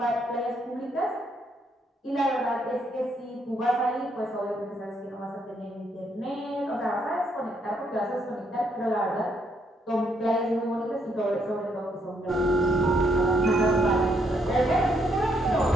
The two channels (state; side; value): normal; both; correlation 0.73